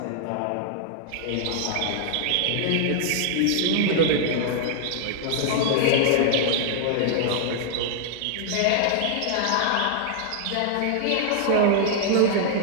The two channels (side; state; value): both; different; correlation -0.01